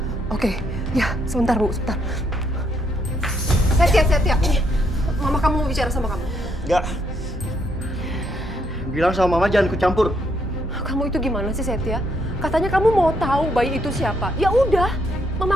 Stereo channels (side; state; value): both; normal; correlation 0.74